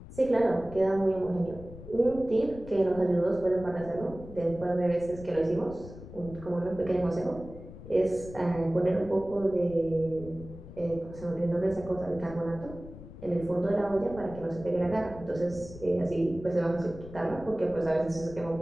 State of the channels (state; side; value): noise; left; rumble, 15 dB below the sound